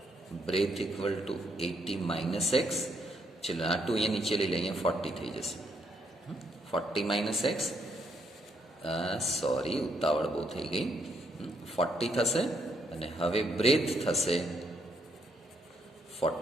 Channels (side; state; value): both; normal; correlation 0.74